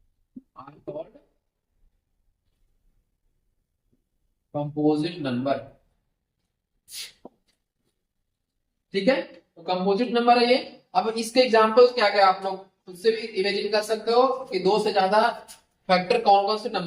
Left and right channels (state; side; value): identical; both; correlation 1.00